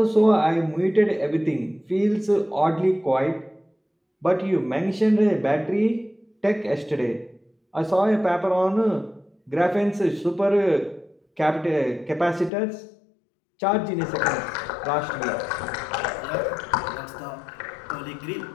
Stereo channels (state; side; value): drops out; right; at 12.5 s